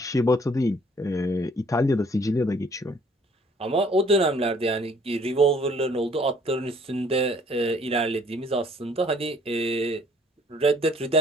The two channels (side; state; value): both; normal; correlation 0.59